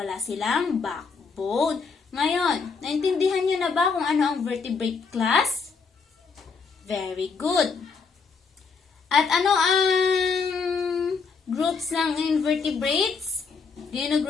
silang backbone. Ngayon, naintindihan niyo na ba kung ano ang vertebrate class? Very good. At ano ang groups ng invertebrates?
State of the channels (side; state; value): right; quieter; 5.1 dB